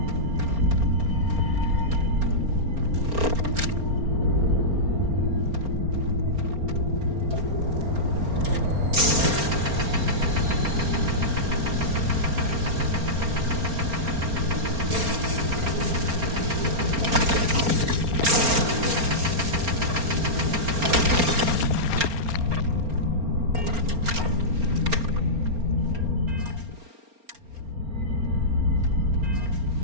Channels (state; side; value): late; left; 4.3 ms